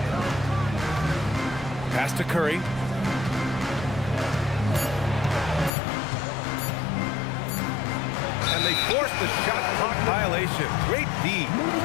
Pass to Curry. And they forced the shot clock violation. Great D.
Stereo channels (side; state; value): right; drops out; at 5.7 s